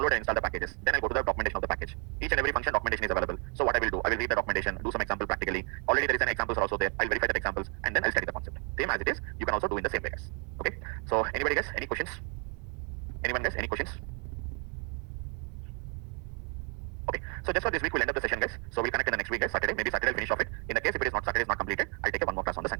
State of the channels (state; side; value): quieter; left; 36.9 dB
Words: and install the packages. Then I go to the documentation of the package. Each and every function documentation is available. So what I will do, I will read the documentation, do some example practically. Already there is an examples are also there. I'll verify that examples and then I'll study the concept. Same as it is, you can also do in the same way, guys. Okay. So anybody, guys, any questions? Anyone, guys, any questions? Okay, so just for this week we'll end up the session, guys. So we'll connect in the next week, guys. Saturday, maybe Saturday I'll finish off it. In the case if it is not Saturday is not completed, I'll take one more class on the